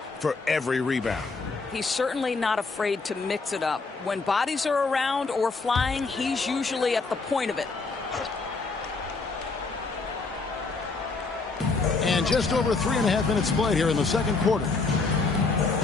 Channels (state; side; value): quieter; right; 4.1 dB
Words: for every rebound. He's certainly not afraid to mix it up. When bodies are around or flying, he's usually at the point of it. And just over 3.5 minutes played here in the second quarter.